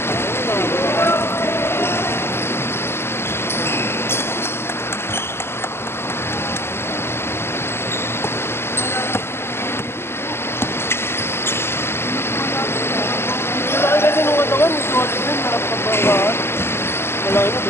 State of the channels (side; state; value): right; late; 0.12 ms